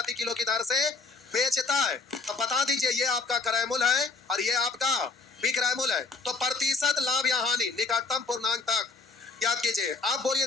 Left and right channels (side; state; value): right; quieter; 4.2 dB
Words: किलो की दर से बेचता है, तो बता दीजिए ये आपका क्रय मूल्य है और ये आपका विक्रय मूल्य है। तो प्रतिशत लाभ या हानि निकटतम पूर्णांक तक याद कीजिए, आप बोलिए